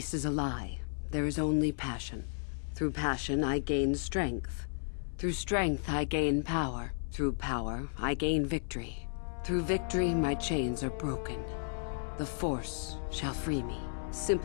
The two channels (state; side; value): silent; right; 55 dB below the other